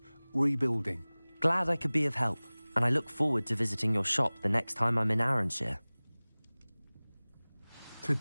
rebuilding. Glad I could be of help, and I look forward to visiting your shop the next time I'm in Arranshire. To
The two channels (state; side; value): inverted; both; correlation -1.00